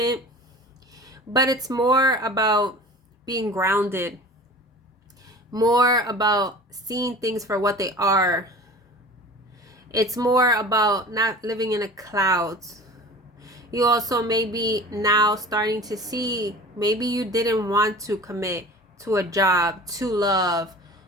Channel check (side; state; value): both; normal; correlation 0.40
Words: But it's more about being grounded, more about seeing things for what they are. It's more about not living in the clouds. You also may be now starting to see, maybe you didn't want to commit to a job, to love,